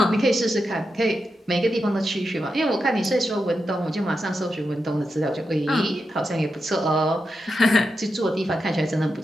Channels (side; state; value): both; normal; correlation 0.88